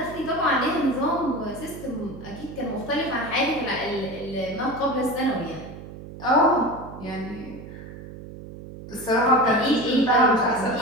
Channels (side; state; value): right; noise; hum, 14 dB below the sound